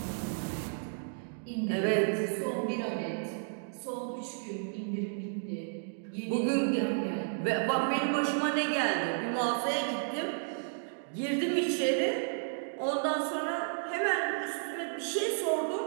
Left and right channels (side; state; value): left; silent; digital silence